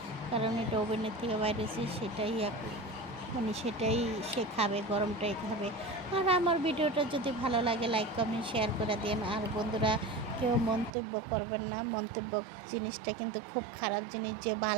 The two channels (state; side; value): drops out; left; at 10.9 s